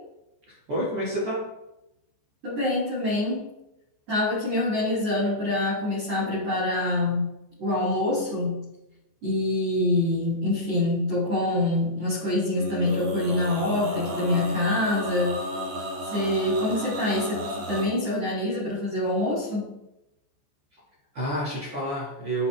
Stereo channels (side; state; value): left; late; 14 ms